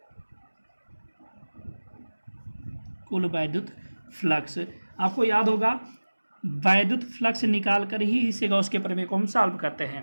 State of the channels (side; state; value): both; inverted; correlation -1.00